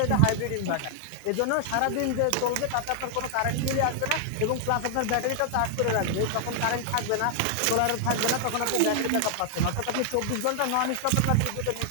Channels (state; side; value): different; both; correlation 0.00